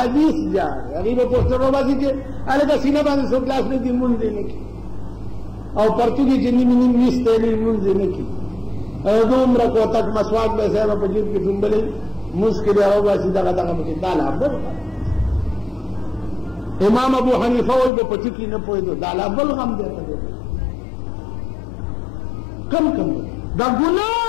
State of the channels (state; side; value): drops out; right; at 17.9 s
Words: جاړي هغوی به پوسټر روباسي چې هلکه سینه باندې څوک لاس نه دي مونځ یې نه کړي او پرتوګې چې نیم نیم ویستی نه مونځ یې نه کړي او دومره کوتک مسواک به صاحبه په جیب کې ډومبلی مونځ کې بیا روباسي دغه پکې دا لا بل امام ابو حنیفه وایي به په ټکي نه پوهېدو دا لا بل غم دی ته کم کم دا ګناه